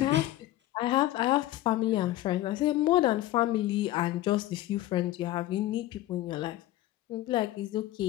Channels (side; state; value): right; quieter; 15.3 dB